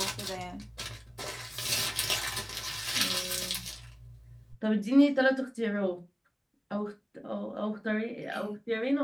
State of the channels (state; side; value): identical; both; correlation 1.00